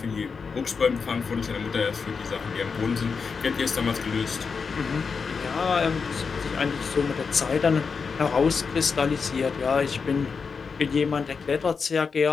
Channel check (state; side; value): quieter; right; 5.3 dB